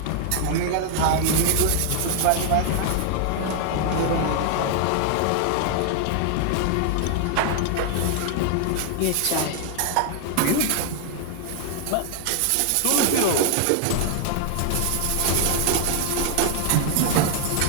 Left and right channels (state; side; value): different; both; correlation 0.00